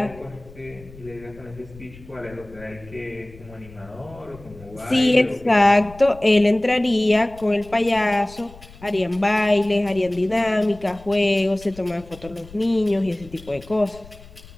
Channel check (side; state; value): left; noise; rumble, 20 dB below the sound